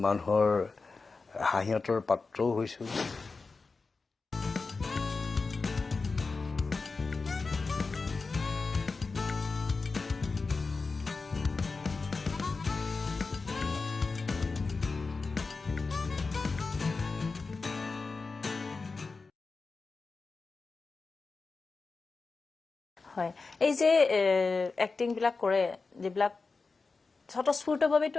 মানুহৰ হাঁহিয়তৰ পাত্ৰও হৈছোঁ হয় এই যে এক্টিং বিলাক কৰে যিবিলাক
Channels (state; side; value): quieter; right; 4.2 dB